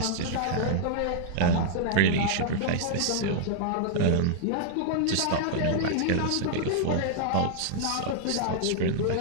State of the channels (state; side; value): different; both; correlation -0.01